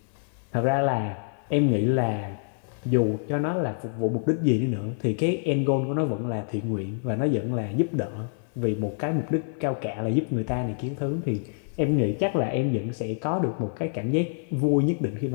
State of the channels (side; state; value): right; silent; 60 dB below the other